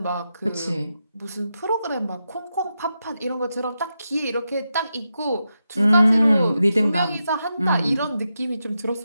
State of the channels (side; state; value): both; inverted; correlation -0.87